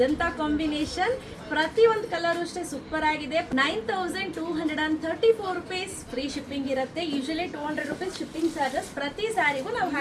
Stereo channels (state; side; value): identical; both; correlation 1.00